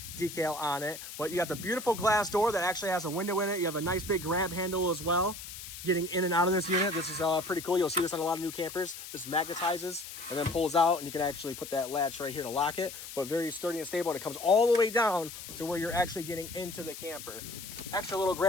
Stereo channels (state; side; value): noise; left; hiss, 11 dB below the sound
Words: decal on it. But you got the beautiful glass door that actually has a window in it. You have a nice big grab handle as well. Getting in and out of this unit, this is pretty cool. You'll see this on a lot of new campers. This magnetizes and then pulls out, and you can actually put that latch right here to lock it, but very sturdy and stable, and it comes all the way down to where you're actually getting into the camper. Extra little